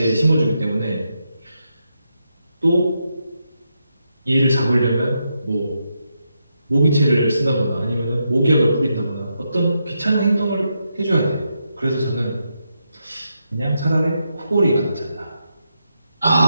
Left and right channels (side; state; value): both; inverted; correlation -0.83